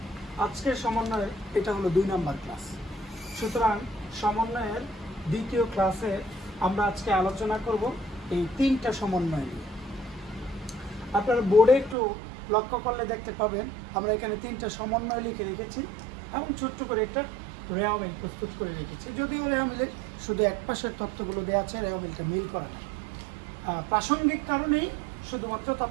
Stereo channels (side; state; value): left; drops out; at 12.0 s